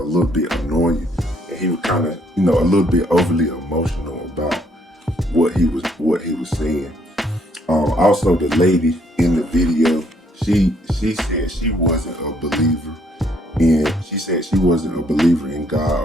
bit annoying, and he was kind of a little bit overly emotional about what he was saying. Also, the lady in the video, she said she wasn't a believer, and she said she wasn't a believer in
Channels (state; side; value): normal; both; correlation 0.68